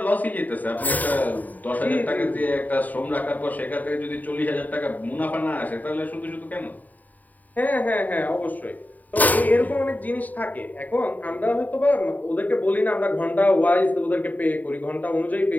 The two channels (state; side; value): late; right; 0.079 ms